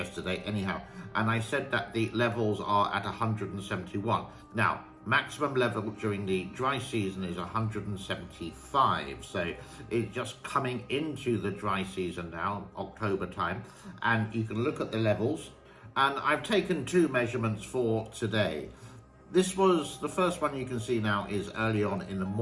anyhow, and I said that the levels are at 171. Now, maximum level during the dry season is 175, so it's just coming into the dry season now, October time, and you can look at the levels, and I've taken two measurements for today. This was, the first one you can see now is early on in the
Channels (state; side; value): identical; both; correlation 1.00